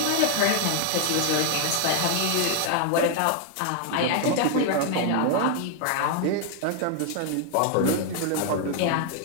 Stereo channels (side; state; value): both; different; correlation 0.00